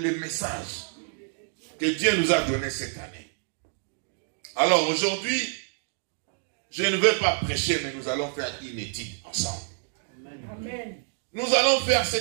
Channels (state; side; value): silent; left; 60 dB below the other